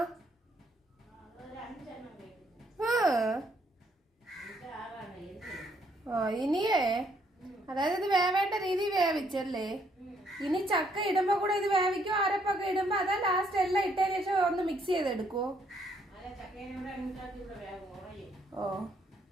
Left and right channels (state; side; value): normal; both; correlation 0.70